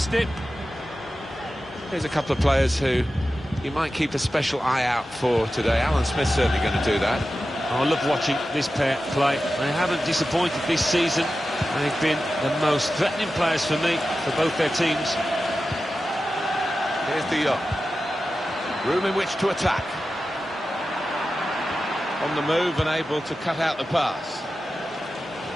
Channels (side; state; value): both; normal; correlation 0.93